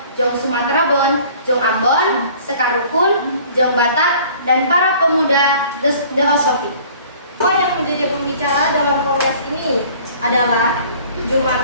Jong Sumatera Bon, Jong Ambon, Sekarukun, Jong Batak, dan para pemuda Deosofi. Yang menjadi pembicara dalam kongres ini adalah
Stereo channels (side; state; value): both; inverted; correlation -0.51